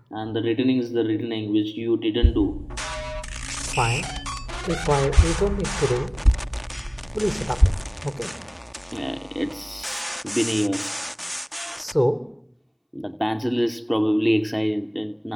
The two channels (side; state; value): both; identical; correlation 1.00